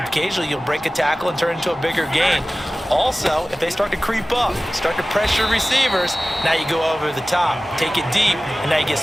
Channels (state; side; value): normal; both; correlation 0.96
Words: occasionally you'll break a tackle and turn it into a bigger gain. Also, if they start to creep up, start to pressure receivers, now you go over the top, take it deep, and now you get